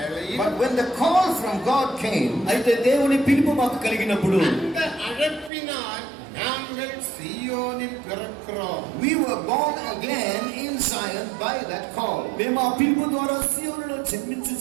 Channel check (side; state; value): left; drops out; at 5.5 s